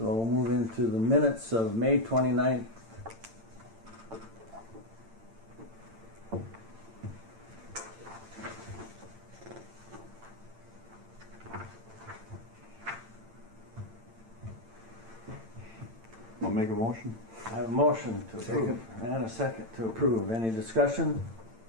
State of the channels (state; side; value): late; left; 8.9 ms